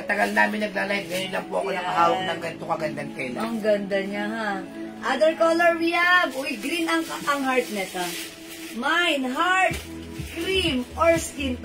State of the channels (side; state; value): both; identical; correlation 1.00